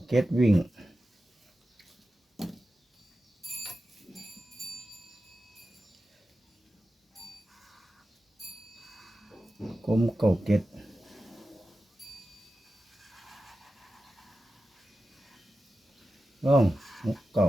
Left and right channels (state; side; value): normal; both; correlation 0.92